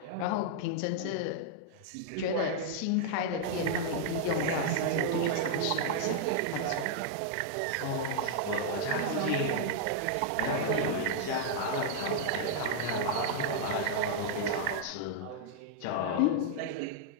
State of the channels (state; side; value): different; both; correlation -0.01